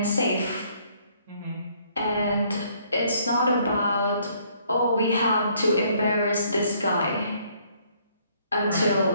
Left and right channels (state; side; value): inverted; both; correlation -0.65